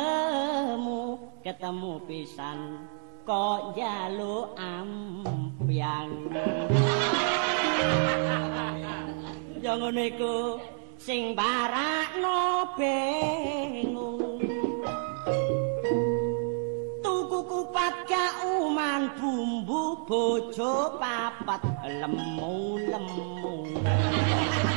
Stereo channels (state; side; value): silent; left; digital silence